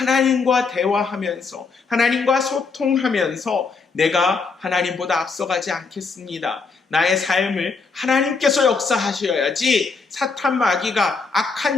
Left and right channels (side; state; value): right; quieter; 4.6 dB